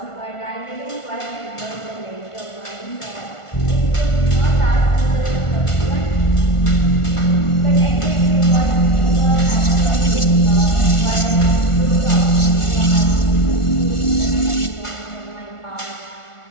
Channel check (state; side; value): late; right; 1.4 ms